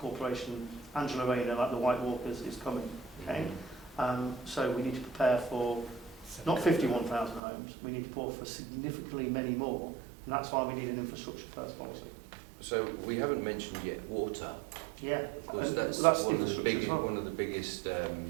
Angela Rayner, like the White Walkers, is coming, okay? So we need to prepare for not 51,000 homes, we need to prepare for significantly many more, and that's why we need an infrastructure first policy. So we haven't mentioned yet water. Yeah, Because and that's one of the biggest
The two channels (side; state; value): left; drops out; at 7.4 s